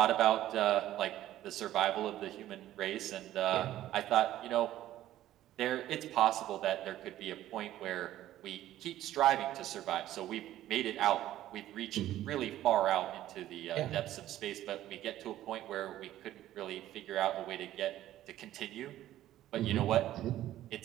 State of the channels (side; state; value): left; quieter; 13.5 dB